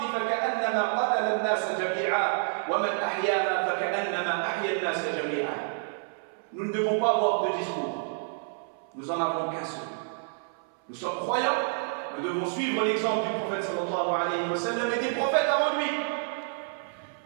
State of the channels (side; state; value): left; silent; 59 dB below the other